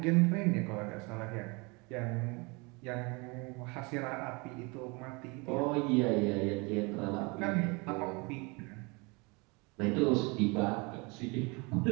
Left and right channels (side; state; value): left; quieter; 28.4 dB